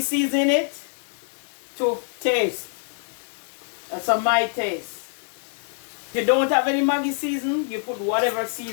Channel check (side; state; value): right; silent; 57 dB below the other